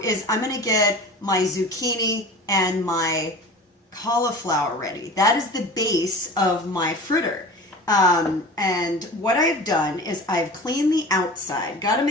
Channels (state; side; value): normal; both; correlation 0.37